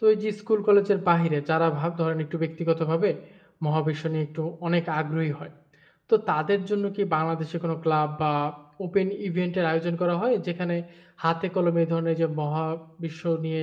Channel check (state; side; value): identical; both; correlation 1.00